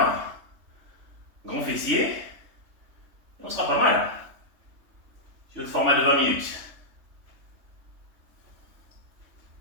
grand fessier, et on sera pas mal. Sur le format de 20 minutes.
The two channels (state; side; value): late; left; 3.2 ms